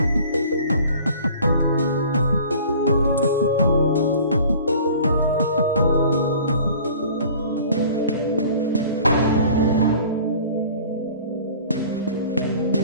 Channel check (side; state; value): both; inverted; correlation -0.47